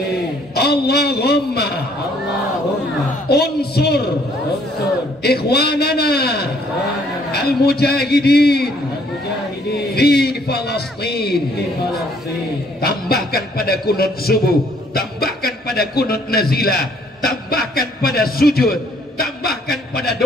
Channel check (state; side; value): normal; both; correlation 0.64